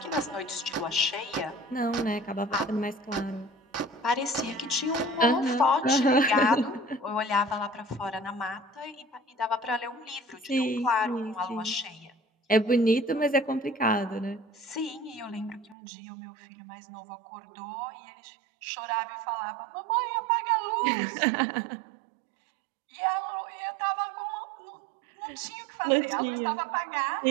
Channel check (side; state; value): left; drops out; at 15.8 s